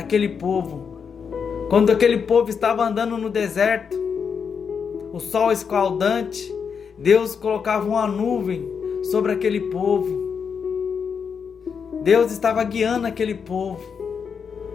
povo. Quando aquele povo estava andando no deserto, o sol escaldante, Deus colocava uma nuvem sobre aquele povo. Deus estava guiando aquele povo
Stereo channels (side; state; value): right; quieter; 6.4 dB